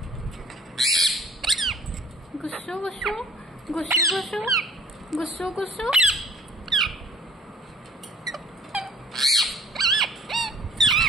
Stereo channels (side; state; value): both; normal; correlation 0.53